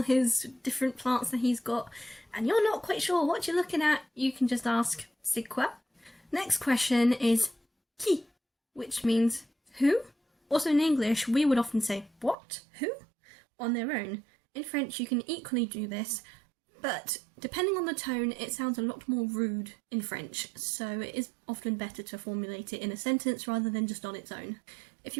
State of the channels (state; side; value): drops out; left; at 12.4 s